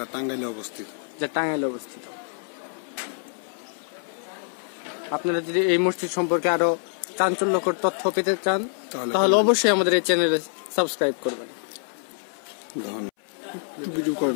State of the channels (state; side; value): silent; right; 61 dB below the other